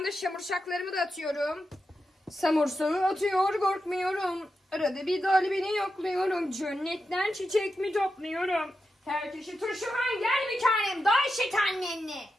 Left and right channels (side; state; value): both; normal; correlation 0.89